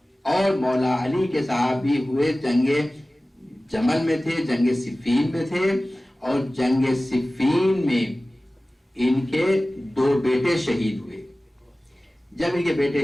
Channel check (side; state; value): both; normal; correlation 0.97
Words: اور مولا علی کے صحابی ہوئے جنگ جمل میں تھے، جنگ صفین میں تھے، اور جنگ صفین میں ان کے 2 بیٹے شہید ہوئے۔ جب ان کے